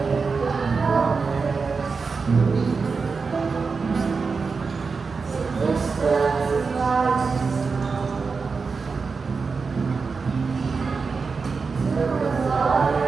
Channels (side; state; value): left; quieter; 4.8 dB